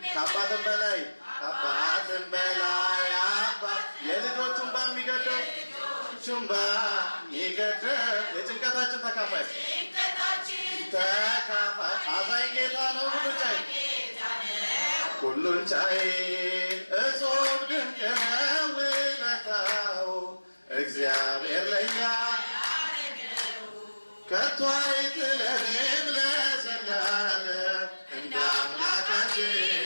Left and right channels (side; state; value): both; inverted; correlation -1.00